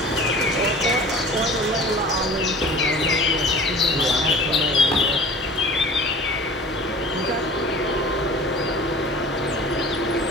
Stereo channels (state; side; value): normal; both; correlation 0.42